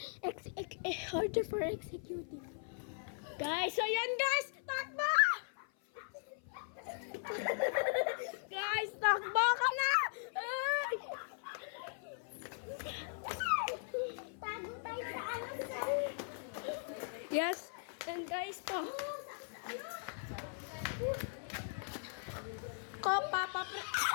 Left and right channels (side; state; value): right; silent; 52 dB below the other